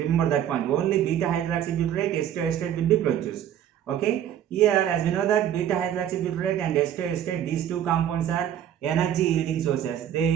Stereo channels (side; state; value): left; quieter; 10.4 dB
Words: that point. Only beta hydroxybutyrate, acetoacetate will be produced. Okay. Here, as we know that beta hydroxybutyrate and acetoacetate, these two compounds are energy yielding sources. They